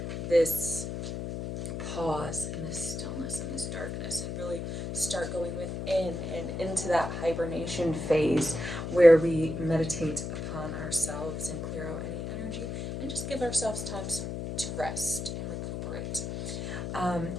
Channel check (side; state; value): left; noise; hum, 5 dB below the sound